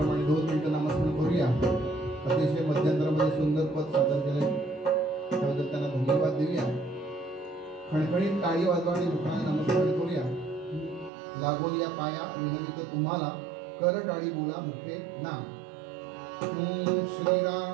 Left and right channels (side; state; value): left; drops out; at 11.1 s